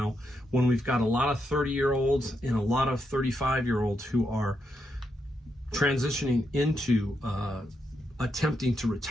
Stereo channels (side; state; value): both; normal; correlation 0.82